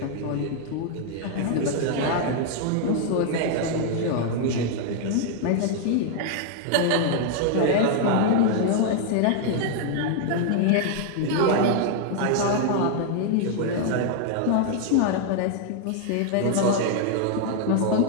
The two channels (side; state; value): both; different; correlation 0.00